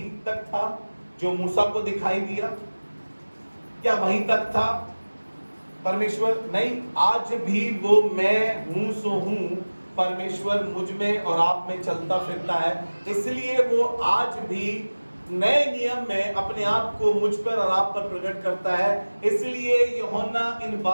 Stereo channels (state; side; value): inverted; both; correlation -1.00